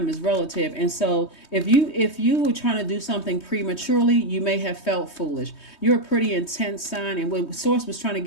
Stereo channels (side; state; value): right; late; 3.2 ms